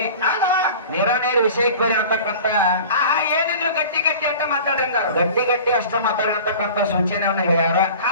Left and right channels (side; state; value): both; inverted; correlation -0.40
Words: ನೇರ ವಿಷಯಕ್ಕೆ ಬರೀ ಅಂತಕ್ಕಂಥ ಏನಿದ್ರು ಗಟ್ಟಿ ಅಂತ ಮಾತಾಡಿದ ಗಟ್ಟಿ ಅಷ್ಟ ಮಾತಾಡಿರ್ತಕ್ಕಂಥ ಸೂಚನೆಯನ್ನ ಹೇಳ್ಯಾರ.